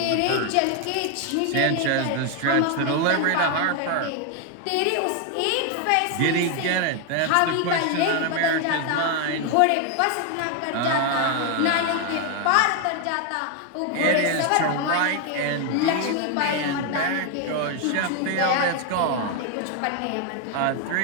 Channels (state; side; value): different; both; correlation 0.01